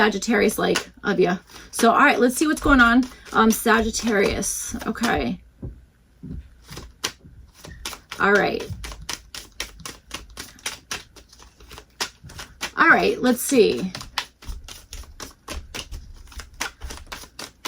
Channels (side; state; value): both; identical; correlation 1.00